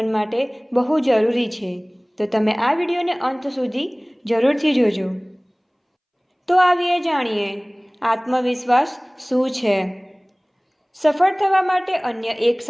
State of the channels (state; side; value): identical; both; correlation 1.00